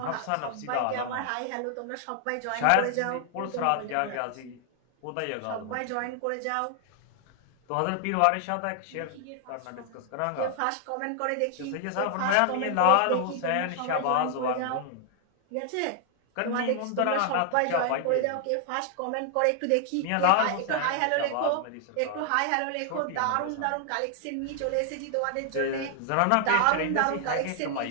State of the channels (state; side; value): different; both; correlation 0.00